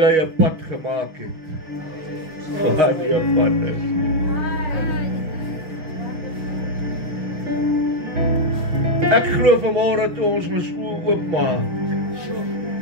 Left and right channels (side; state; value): left; late; 6.3 ms